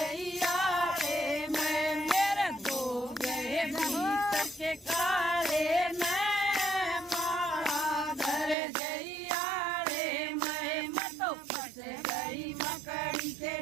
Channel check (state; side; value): drops out; left; at 8.6 s